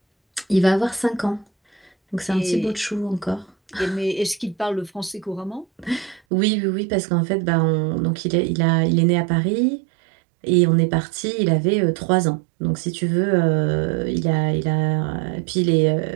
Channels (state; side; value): drops out; left; at 6.2 s